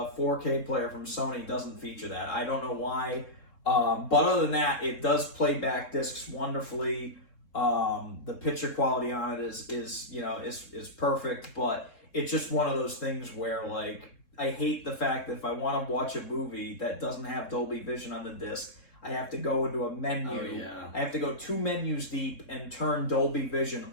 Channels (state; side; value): late; right; 3.7 ms